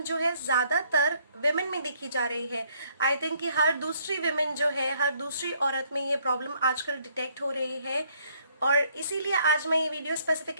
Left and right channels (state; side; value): inverted; both; correlation -0.66